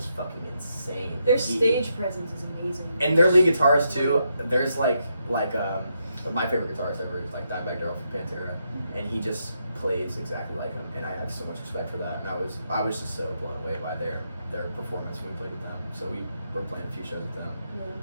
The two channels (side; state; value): both; inverted; correlation -0.81